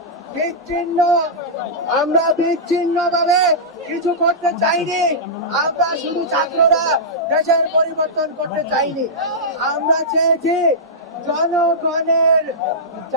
বিচ্ছিন্ন ভাবে কিছু করতে চাইনি। আমরা শুধু ছাত্ররা দেশের পরিবর্তন করতে চাইনি। আমরা চেয়েছি জনগণের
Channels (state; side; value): normal; both; correlation -0.13